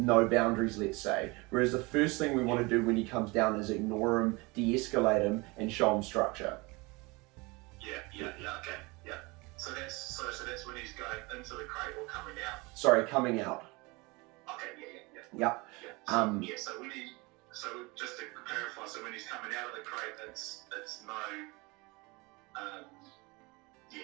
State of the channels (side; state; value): left; quieter; 25.5 dB